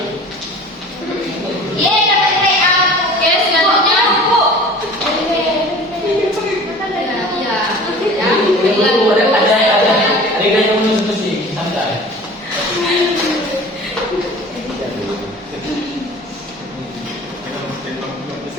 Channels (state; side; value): normal; both; correlation 0.42